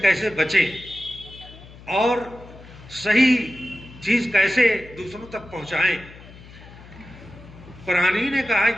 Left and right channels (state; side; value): noise; left; hum, 19 dB below the sound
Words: کیسے بچیں اور صحیح چیز کیسے دوسروں تک پہنچائیں. قرآن نے کہا